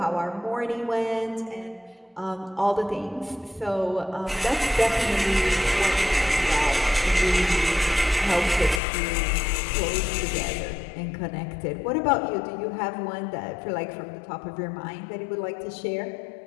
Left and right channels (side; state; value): right; drops out; at 8.8 s